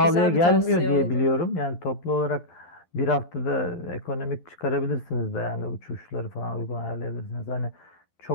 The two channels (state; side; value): late; right; 12 ms